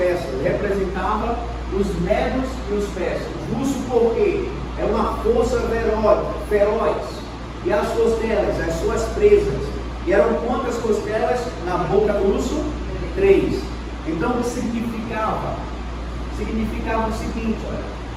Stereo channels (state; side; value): identical; both; correlation 1.00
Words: Representava os medos e os persas. Urso porque é uma força feroz. E as costelas, as suas presas. E eram quantas costelas na boca do urso? 3. Então o que significava? Significava o seguinte, olha,